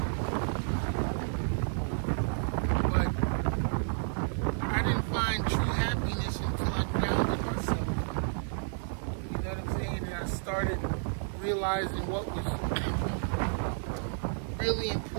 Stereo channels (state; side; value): silent; left; 57 dB below the other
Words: But I didn't find true happiness until I grounded myself. You know what I'm saying? And I started realizing what was really